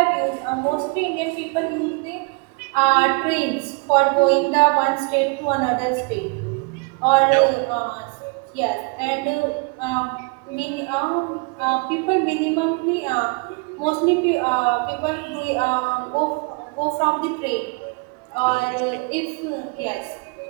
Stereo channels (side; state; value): left; quieter; 30.4 dB